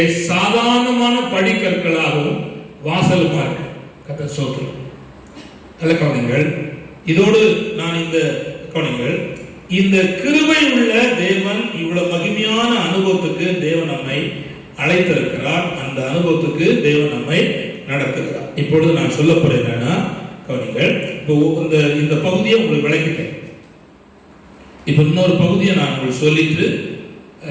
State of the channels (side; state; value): both; identical; correlation 1.00